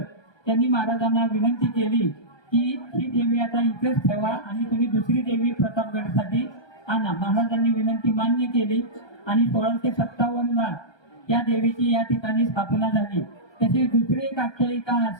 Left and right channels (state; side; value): late; right; 1.2 ms